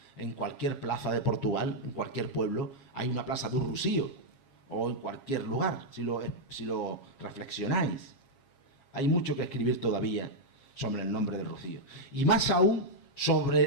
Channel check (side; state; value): right; late; 7.4 ms